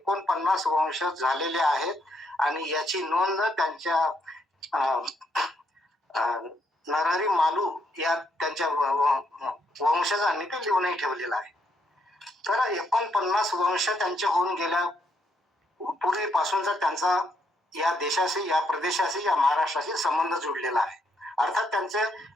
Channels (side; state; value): both; normal; correlation 0.75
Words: वंशज झालेले आहेत आणि याची नोंद त्यांच्या नरहरी मालू या त्यांच्या वंशजांनी ते लिहूनही ठेवलेलं आहे. तर 49 वंश त्यांचे होऊन गेल्या पूर्वीपासूनचा त्यांचा या देशाशी, या प्रदेशाशी, या महाराष्ट्राशी संबंध जुडलेला आहे. अर्थात त्यांचे